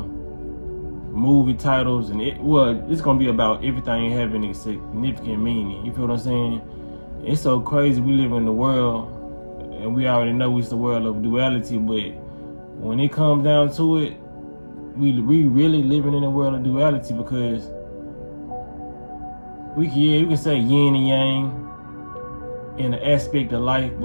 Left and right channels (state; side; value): inverted; both; correlation -1.00